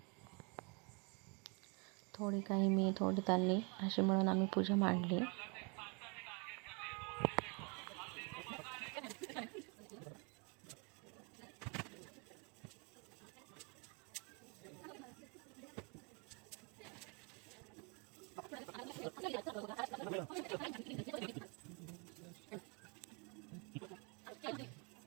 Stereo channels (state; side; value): quieter; left; 33.2 dB